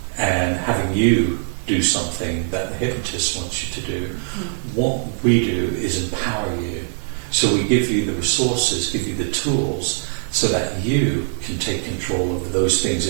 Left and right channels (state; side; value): silent; left; digital silence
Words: and having you do something that the hypnotist wants you to do, what we do is empower you. So we give you the resources, give you the tools, so that you can take control over those things